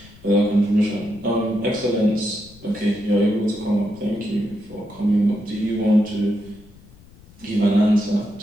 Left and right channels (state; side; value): noise; left; rumble, 24 dB below the sound